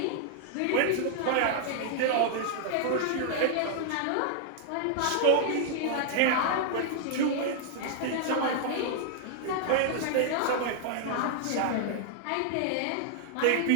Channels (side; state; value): both; different; correlation 0.00